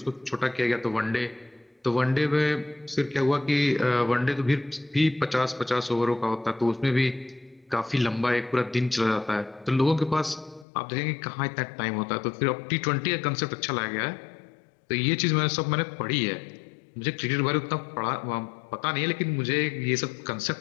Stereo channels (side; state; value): right; drops out; at 10.7 s